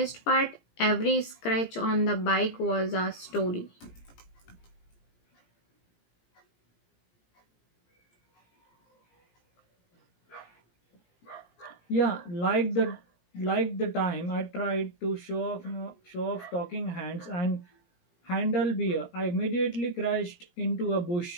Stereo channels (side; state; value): right; late; 17 ms